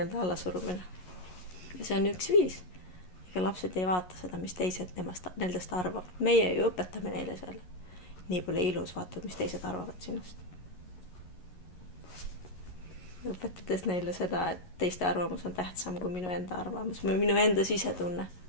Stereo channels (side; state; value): right; late; 11 ms